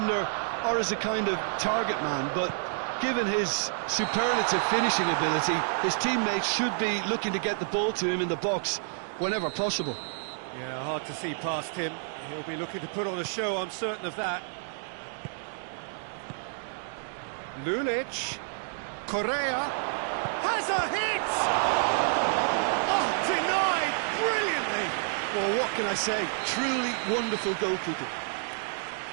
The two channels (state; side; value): silent; left; digital silence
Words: or as a kind of target man, but given his superlative finishing ability, his teammates should be looking to get the ball to him in the box whenever possible. Yeah, hard to see past him. He'll be looking to put on a show, I'm certain of that. Lulic, Correa, has a hit! Oh, denied brilliantly! Well, what can I say? Truly wonderful goalkeeping.